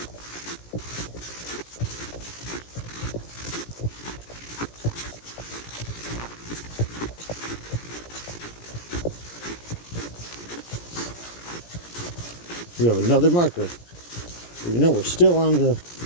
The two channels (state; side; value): late; right; 17 ms